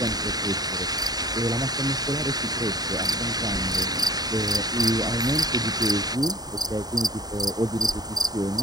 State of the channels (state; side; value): late; left; 0.19 ms